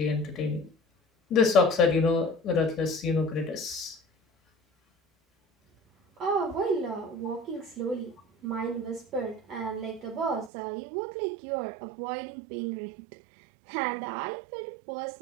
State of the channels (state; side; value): drops out; left; at 10.5 s